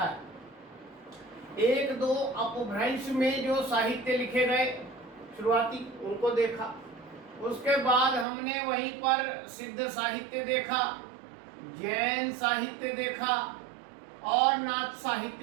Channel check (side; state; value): left; drops out; at 8.2 s